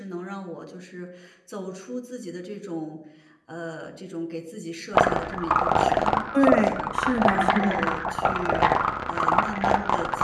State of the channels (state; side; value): identical; both; correlation 1.00